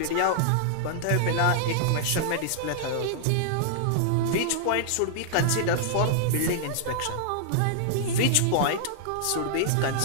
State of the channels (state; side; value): different; both; correlation -0.01